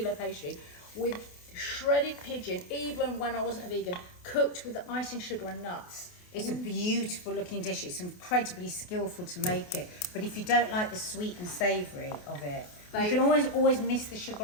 pastry with shredded pigeon, even when I wasn't a vegan, cooked with the icing sugar and nuts. It's a beautiful looking dish. It's incredibly skillful to make it. But if you don't like the sweet and savoury of it, you can always miss the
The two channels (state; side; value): late; right; 28 ms